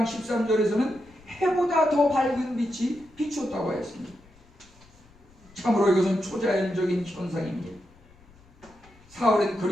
13절에서는 해보다 더 밝은 빛이 비췄다고 했습니다. 참으로 이것은 초자연적인 현상입니다. 사울은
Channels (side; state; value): left; noise; rumble, 27 dB below the sound